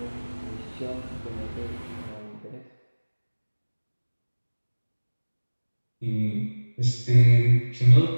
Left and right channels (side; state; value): both; inverted; correlation -1.00